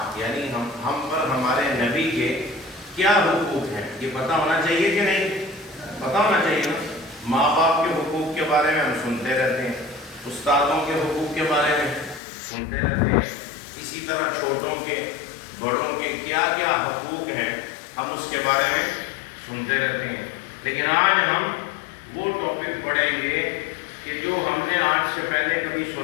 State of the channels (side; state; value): right; drops out; at 12.2 s